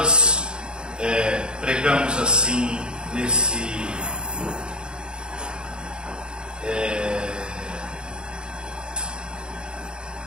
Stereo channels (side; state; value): left; late; 0.049 ms